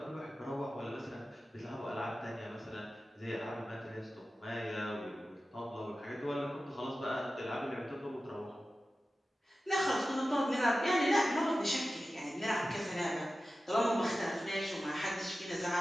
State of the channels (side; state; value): both; normal; correlation 0.94